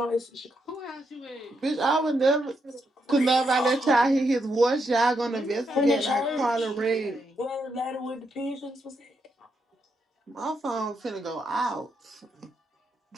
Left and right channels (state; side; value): normal; both; correlation 0.81